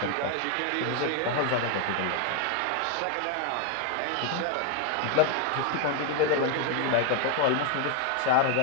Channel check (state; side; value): different; both; correlation 0.00